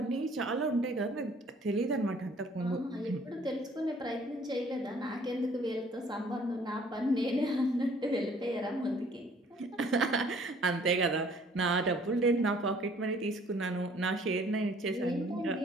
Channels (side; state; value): both; normal; correlation 0.57